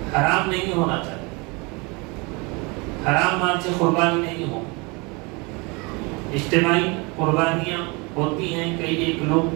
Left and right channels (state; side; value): quieter; left; 28.1 dB